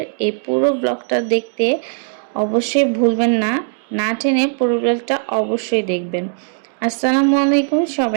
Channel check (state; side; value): silent; left; digital silence